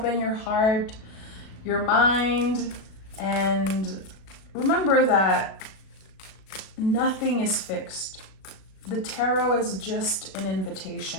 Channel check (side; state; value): right; late; 37 ms